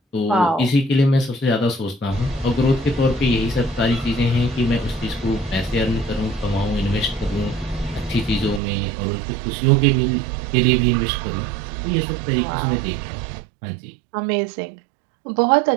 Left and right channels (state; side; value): drops out; left; at 8.6 s